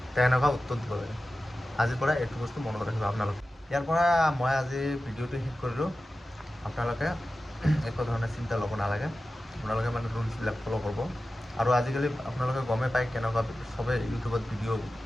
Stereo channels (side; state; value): both; normal; correlation 0.94